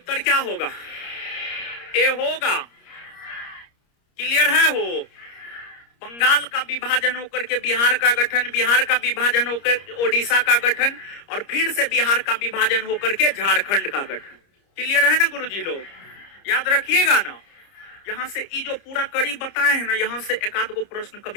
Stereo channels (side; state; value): right; late; 30 ms